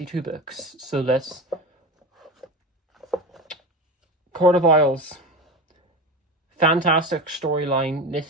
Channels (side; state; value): both; normal; correlation 0.25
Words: books. So let's... Court of Owls. Fantastic storyline.